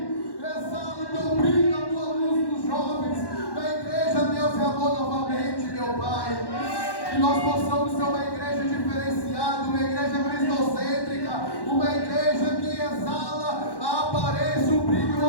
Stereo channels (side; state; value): right; late; 1.1 ms